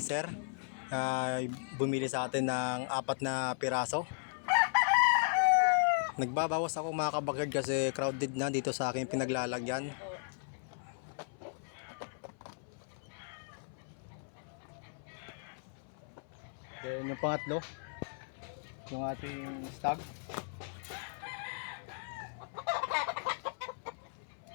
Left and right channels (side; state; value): right; silent; 54 dB below the other